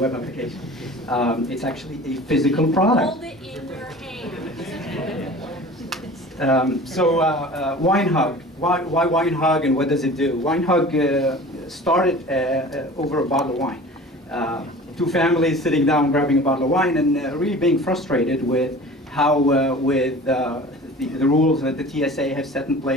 application. It's actually a physical product. Hold it in your hand. WineHug. Why WineHug, and what does it do? WineHug started over a bottle of wine. Two families sitting down, grabbing a bottle of wine, and really being frustrated with how with the rules that the TSA have set in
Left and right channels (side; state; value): both; normal; correlation 0.41